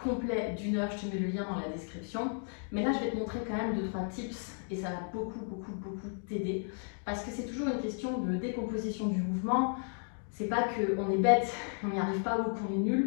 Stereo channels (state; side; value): silent; right; 55 dB below the other